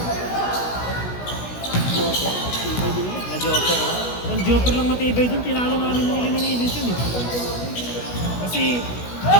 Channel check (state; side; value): late; right; 16 ms